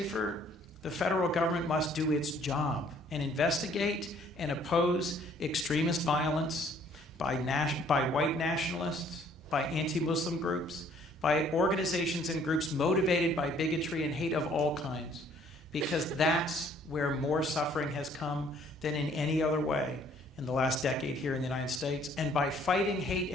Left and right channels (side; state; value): both; normal; correlation 0.60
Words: the federal government must do its job and investigate and oppose extremist violence by white nationalists, by anti-Muslim groups, by organizations and groups motivated by bigotry and hate of all kinds, because that's where more suffering has come than in any other way in the last decade here in the United States. And by fighting hate